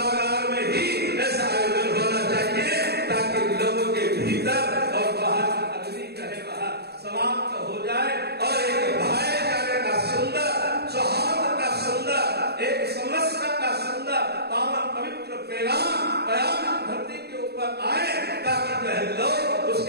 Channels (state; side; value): late; left; 0.47 ms